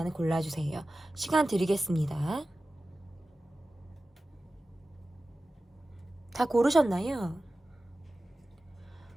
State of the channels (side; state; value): both; normal; correlation 0.95